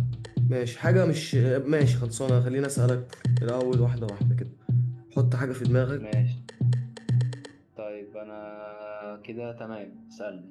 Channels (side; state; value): both; identical; correlation 1.00